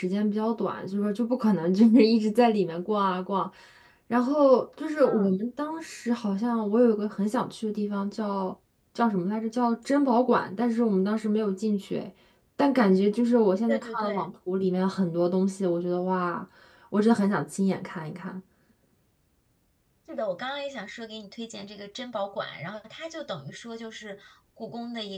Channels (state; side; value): identical; both; correlation 1.00